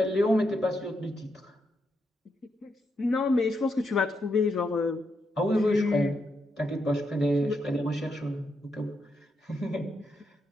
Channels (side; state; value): both; normal; correlation 0.82